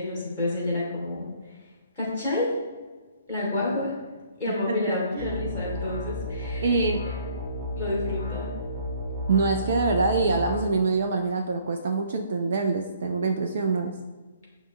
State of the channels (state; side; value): inverted; both; correlation -0.60